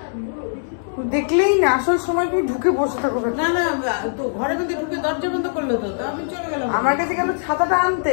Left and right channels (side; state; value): right; silent; digital silence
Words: দেখলেই না আসল সময় তুমি ঢুকে বসে থাকো। না না, তো ঘরের মধ্যে ঢুকে দরজা বন্ধ করলো, তো আমি চলে গেলাম আমার কাছে গেল ছাতাটা